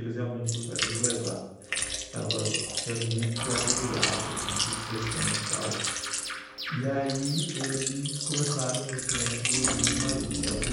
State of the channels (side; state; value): both; identical; correlation 1.00